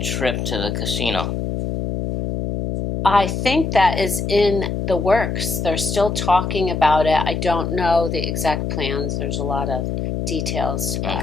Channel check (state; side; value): noise; left; hum, 2 dB below the sound